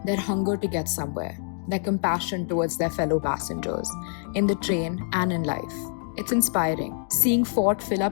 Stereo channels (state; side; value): silent; right; 60 dB below the other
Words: their hunger to get somewhere, their compassion towards their fellow passengers, in the train and in life. It's inspiring. Seeing Fort fill